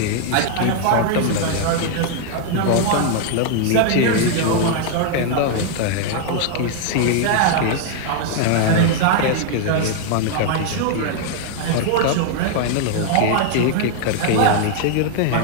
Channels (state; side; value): different; both; correlation 0.00